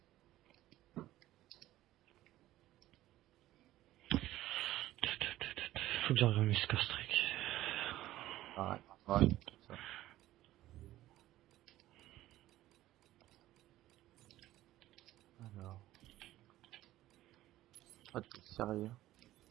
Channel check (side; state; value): left; quieter; 15.0 dB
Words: Faut que j'envoie mes score-streak. Ouais. Ça. Alors. Oh, t'es sérieux?